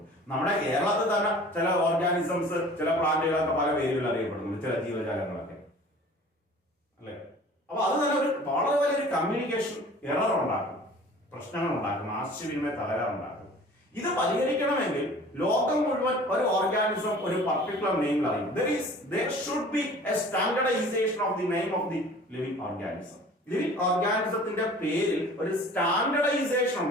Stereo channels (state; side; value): normal; both; correlation 0.46